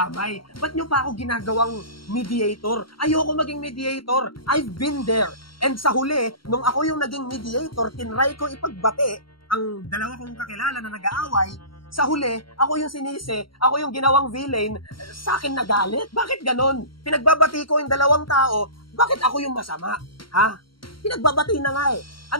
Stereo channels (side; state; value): right; late; 0.73 ms